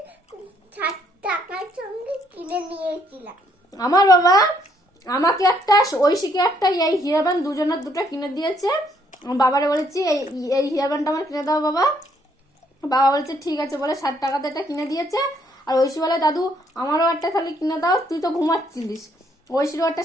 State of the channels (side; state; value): both; normal; correlation 0.69